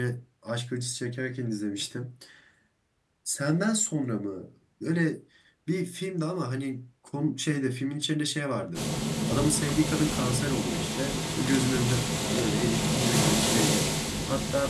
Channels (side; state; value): both; identical; correlation 1.00